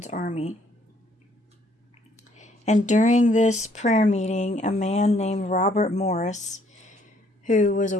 army. And during this prayer meeting, a man named Robert Morris, who was a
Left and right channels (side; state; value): both; normal; correlation 0.65